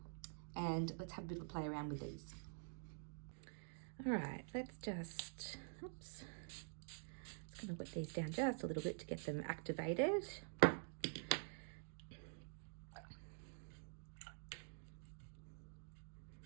and let's have a bit of a play around with these. All right, let's just, oops. Just going to wet these down just a little bit to get them activated.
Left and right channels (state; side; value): silent; left; digital silence